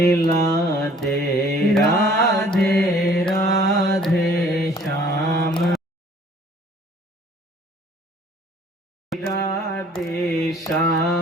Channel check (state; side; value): normal; both; correlation 0.55